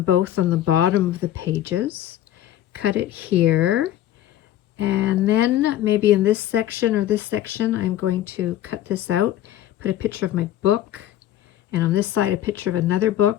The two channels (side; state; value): right; quieter; 12.4 dB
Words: both on the bottom of the pages, cut it here, and then maybe in this section or this section, I'm going to cut this out, put a picture of my book, and on this side, a picture of another